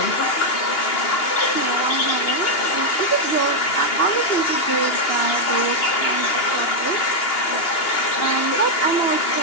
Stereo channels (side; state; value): right; late; 2.9 ms